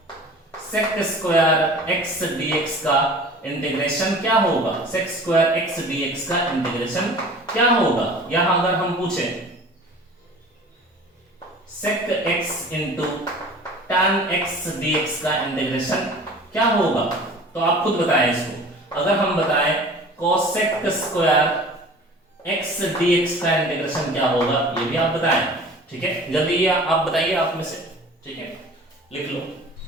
x dx का इंटीग्रेशन क्या होगा, sec स्क्वायर x dx का इंटीग्रेशन क्या होगा। यहां अगर हम पूछे sec x into tan x dx का इंटीग्रेशन क्या होगा, तो आप खुद बताएं इसको। अगर हम बताएं cosec स्क्वायर x dx का इंटीग्रेशन क्या होगा, ये भी आप बताएं, ठीक है, जल्दी ये आप बताइए आप में से, ठीक है, लिख लो।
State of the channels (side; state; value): both; normal; correlation 0.43